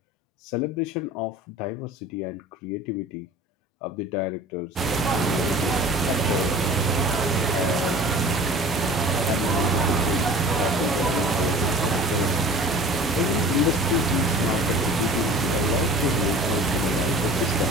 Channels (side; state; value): both; normal; correlation 0.43